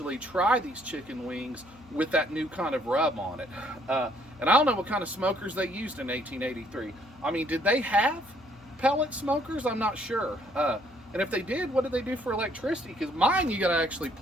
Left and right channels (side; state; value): left; noise; hum, 25 dB below the sound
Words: try these chicken wings with that new kind of rub on it. And I don't know what kind of smokers they used in 1883. I mean, did they have pellet smokers? I'm not sure. And if they did, what did they do for electricity? Because mine, you got to actually